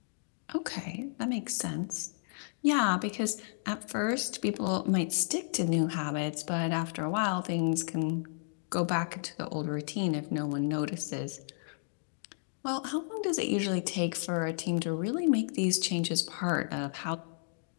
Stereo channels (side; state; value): right; silent; digital silence